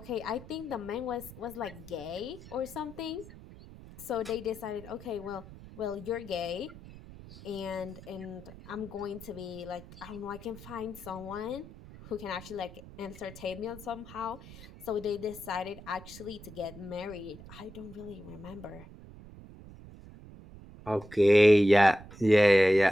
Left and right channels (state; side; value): noise; right; rumble, 17 dB below the sound